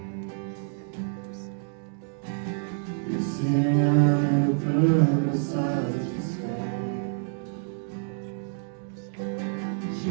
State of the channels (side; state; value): left; silent; 60 dB below the other